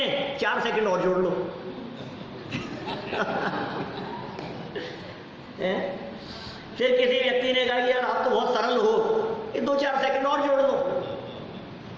4 सेकंड और जोड़ लो। फिर किसी व्यक्ति ने कहा कि यार आप तो बहुत सरल हो, ये 2-4 सेकंड और जोड़ लो।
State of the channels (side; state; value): both; identical; correlation 1.00